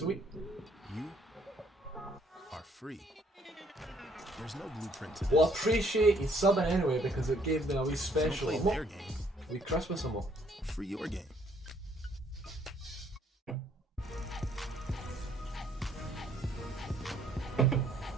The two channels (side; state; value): both; normal; correlation 0.65